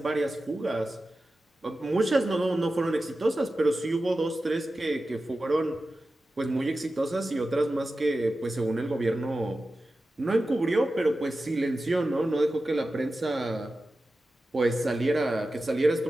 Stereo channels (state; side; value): normal; both; correlation 0.93